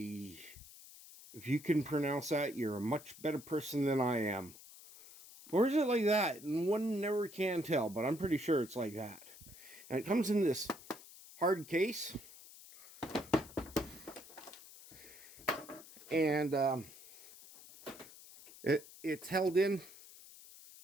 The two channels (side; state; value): left; noise; hiss, 18 dB below the sound